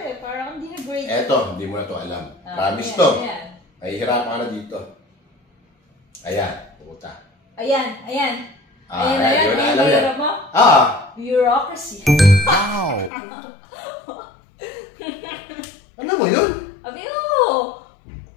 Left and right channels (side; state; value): right; drops out; at 13.1 s